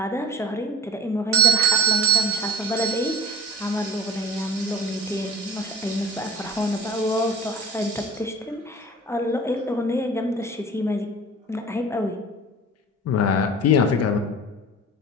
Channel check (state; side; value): normal; both; correlation 0.42